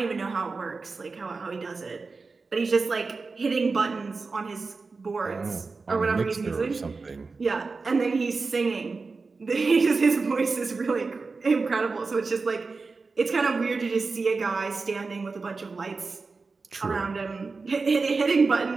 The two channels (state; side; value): quieter; left; 4.2 dB